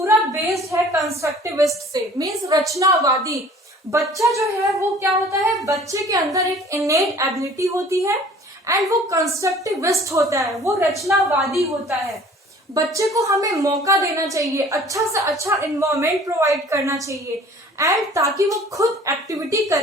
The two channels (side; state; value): both; normal; correlation 0.50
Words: बेस्ड है कंस्ट्रक्टिविस्ट से, मीन्स रचनावादी। बच्चा जो है वो क्या होता है, बच्चे के अंदर एक इनेट एबिलिटी होती है एंड वो कंस्ट्रक्टिविस्ट होता है, वो रचनावादी होता है। बच्चे को हमें मौका देना चाहिए, अच्छा से अच्छा इन्वायरमेंट प्रोवाइड करना चाहिए एंड ताकि वो खुद एक्टिविटी